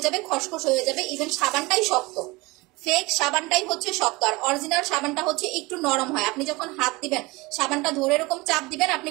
যাবে, খসখস হয়ে যাবে, ইভেন সাবানটাই শক্ত। ফেক সাবানটাই হচ্ছে শক্ত, আর অরিজিনাল সাবানটা হচ্ছে একটু নরম হয়। আপনি যখন হাত দিবেন, সাবানটা ধরে এরকম চাপ দিবেন, আপনি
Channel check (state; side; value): quieter; left; 23.3 dB